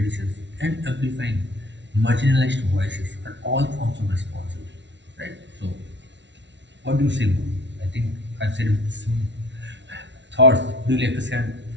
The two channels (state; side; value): late; left; 0.52 ms